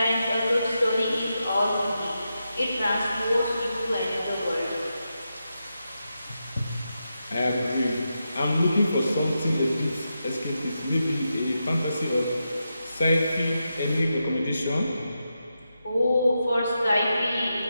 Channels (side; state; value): both; inverted; correlation -0.87